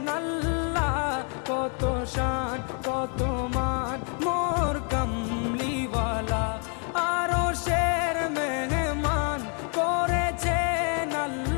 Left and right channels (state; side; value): quieter; right; 39.6 dB